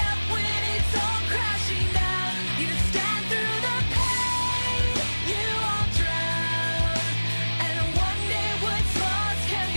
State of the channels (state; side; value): inverted; both; correlation -1.00